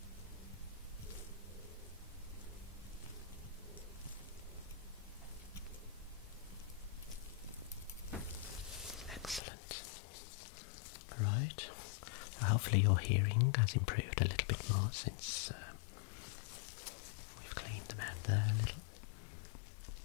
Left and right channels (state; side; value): drops out; right; at 9.4 s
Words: Excellent. Right. So hopefully your hearing has improved a little bit more since we've cleaned them out there a little.